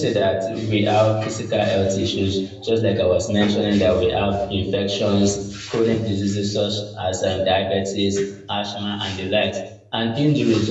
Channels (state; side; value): identical; both; correlation 1.00